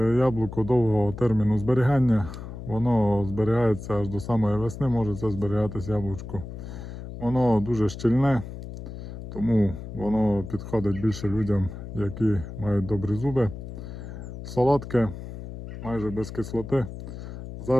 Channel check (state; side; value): noise; left; hum, 10 dB below the sound